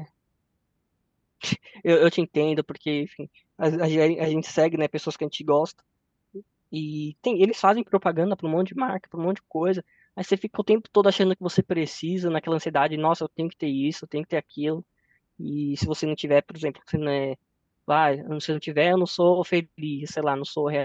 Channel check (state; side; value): identical; both; correlation 1.00